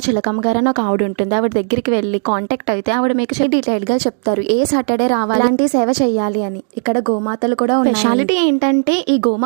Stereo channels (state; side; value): silent; left; digital silence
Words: చిలకమ్మ గారు అని ఒక ఆవిడ ఉంటుంది. ఆవిడ దగ్గరికి వెళ్ళి కాంటాక్ట్ అయితే ఆవిడ మీకు డీటెయిల్ గా చెప్తారు ఏ సాటర్డే రావాలి, అలాంటి సేవ చేయాలి అని. ఇక్కడ గోమాతలు కూడా ఉన్నాయి. స్పెషాలిటీ ఏంటంటే ఈ